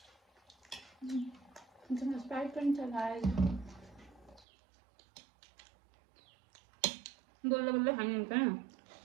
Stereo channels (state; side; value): drops out; left; at 4.5 s